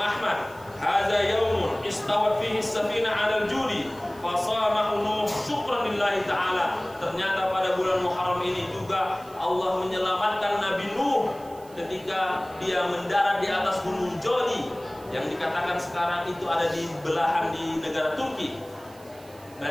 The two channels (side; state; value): right; noise; hiss, 24 dB below the sound